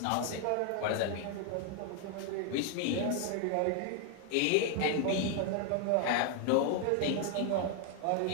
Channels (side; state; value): both; different; correlation 0.00